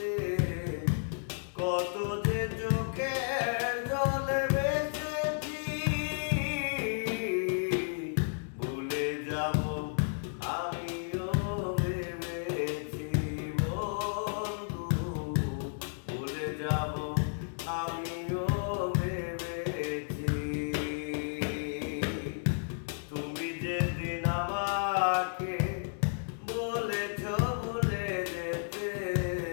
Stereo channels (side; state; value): right; silent; digital silence